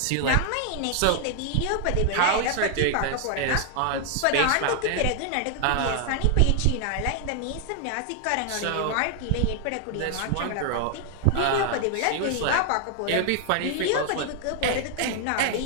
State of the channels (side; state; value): both; different; correlation 0.00